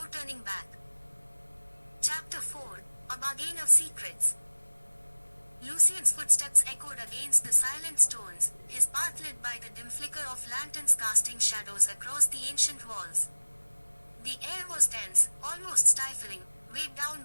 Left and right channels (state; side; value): inverted; both; correlation -1.00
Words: turning back. Chapter 4, A Bargain of Secrets. Lucian's footsteps echoed against the silent stones, his path lit by the dim flicker of lanterns casting shadows across the ancient walls. The air was dense, almost stifling, weighed down